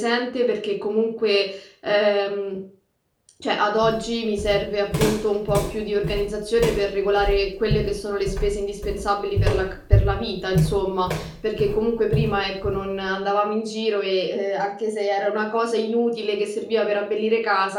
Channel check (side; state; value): both; identical; correlation 1.00